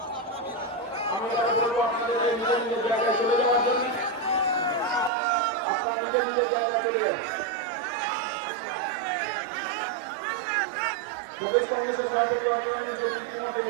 আমি বলবো আপনাদের নিজের নিজের জায়গায় চলে যাওয়ার জন্য, আপনারা নিজের নিজের জায়গায় চলে যান। প্রদেশ কংগ্রেসের সভাপতি অঞ্জন ইতিমধ্যে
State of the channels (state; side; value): drops out; left; at 5.1 s